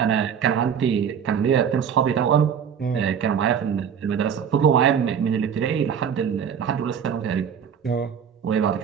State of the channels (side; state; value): left; quieter; 7.8 dB